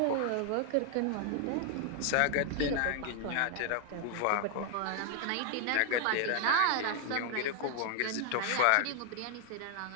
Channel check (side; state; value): both; different; correlation 0.00